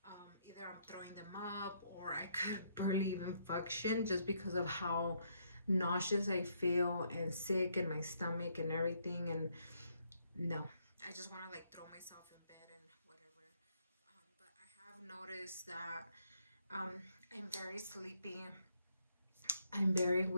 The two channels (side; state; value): both; inverted; correlation -0.72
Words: either I'm throwing them up, or I could barely even function just because of how nauseous I feel and sick in my stomach and everything. And no, I just want to like throw myself in bed and whatever. But I have noticed that um, I'm very sleepy. I'm very